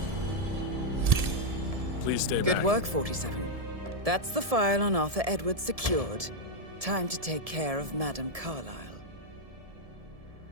Please stay back. Good work, 47. That's the file on Arthur Edwards secured. Time to take care of Madame Carlisle.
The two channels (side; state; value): left; late; 1.7 ms